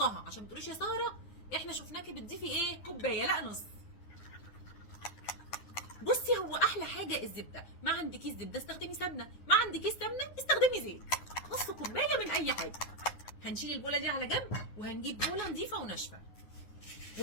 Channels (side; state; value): right; late; 9.6 ms